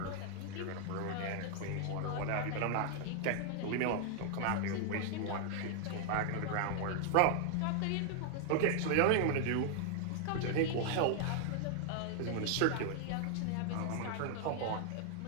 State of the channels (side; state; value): both; different; correlation 0.00